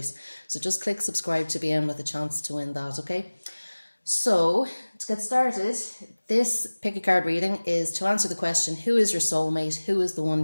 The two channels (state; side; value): inverted; both; correlation -1.00